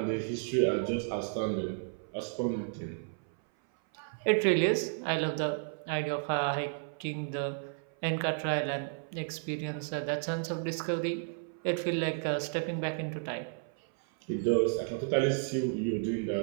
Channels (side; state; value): left; silent; 55 dB below the other